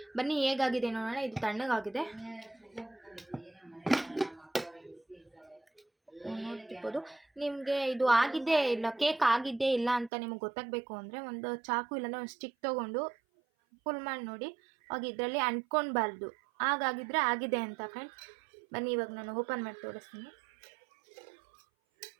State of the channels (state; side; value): drops out; left; at 10.1 s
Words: ಬನ್ನಿ ಹೇಗಾಗಿದೆ ನೋಡೋಣ. ಇದು ತಣ್ಣಗಾಗಿದೆ, ನೋಡ್ತಿರ್ಬೋದು. ನಿಮಗೆ ಇದು ಆಗಿದ್ದೇ ಇಲ್ಲ, ಕೇಕ್ ಆಗಿದ್ದೇ ಇಲ್ಲ ಅಂತ ನಿಮಗೆ ಗೊತ್ತಾಗಬೇಕು ಅಂದರೆ ಒಂದು ಚಾಕು ಇಲ್ಲಾಂದರೆ ಒಂದು ಸ್ಟಿಕ್ ತೊಗೊಂಡು ಫುಲ್ ಮಾಡಿ ನೋಡಿ. ಆಗ ಇದರಲ್ಲಿ ಅಂಟ್ಕೊಳ್ಬಾರ್ದು, ಹಾಗಾಗಿದ್ರೆ ಆಗಿದೆ ಅಂತ ಫ್ರೆಂಡ್ಸ್. ಬನ್ನಿ ಇವಾಗ ನಾನು ಓಪನ್ ಮಾಡಿ ತೋರಿಸ್ತೀನಿ.